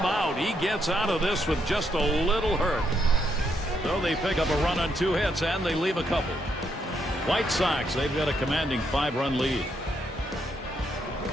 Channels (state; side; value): normal; both; correlation 0.77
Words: out. He gets out of this with just a little hurt. So they pick up a run on 2 hits, and they leave a couple. White Sox, they've got a commanding 5-run lead.